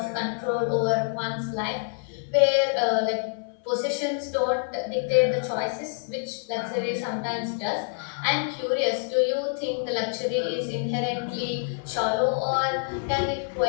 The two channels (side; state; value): right; silent; 59 dB below the other